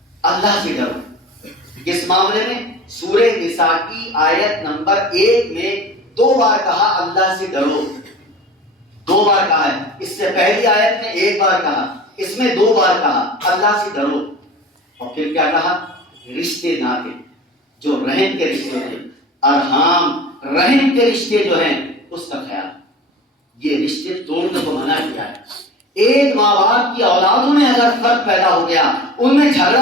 اللہ سے ڈرو۔ کس معاملے میں؟ سورہ نساء کی آیت نمبر 1 میں 2 بار کہا اللہ سے ڈرو، 2 بار کہا ہے۔ اس سے پہلی آیت میں 1 بار کہا، اس میں 2 بار کہا اللہ سے ڈرو۔ اور پھر کیا کہا؟ رشتے ناطے جو رحم کے رشتے ہیں، ارحام رحم کے رشتے جو ہیں اس کا خیال، یہ رشتے توڑنے کو منع کیا ہے۔ ایک ماں باپ کی اولادوں میں اگر فرق پیدا ہو گیا، ان میں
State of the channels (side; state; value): both; normal; correlation 0.38